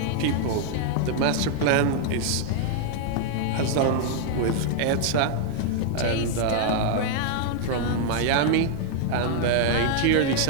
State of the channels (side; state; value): both; different; correlation -0.01